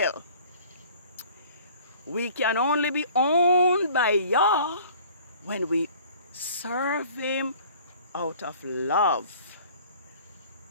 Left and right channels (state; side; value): inverted; both; correlation -0.50